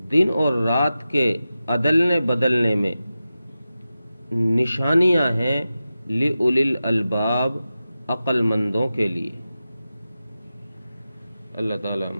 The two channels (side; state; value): both; inverted; correlation -0.93